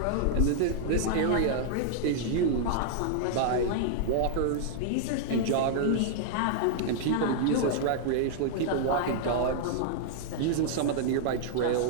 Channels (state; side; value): different; both; correlation -0.01